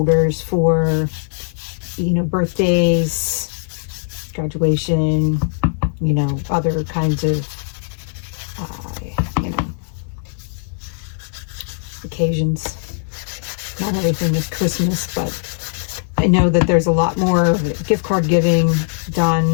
for, birthdays, graduation, other kinds of, occasions. Not everything is Christmas, but I know that there's a lot more gift card giving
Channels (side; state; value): right; silent; 66 dB below the other